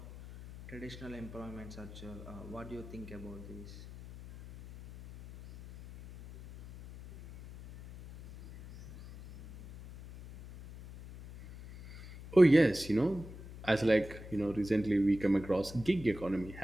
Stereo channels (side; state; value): left; noise; hum, 15 dB below the sound